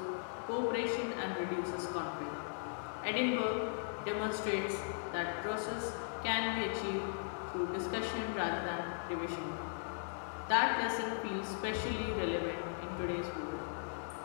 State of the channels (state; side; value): silent; right; digital silence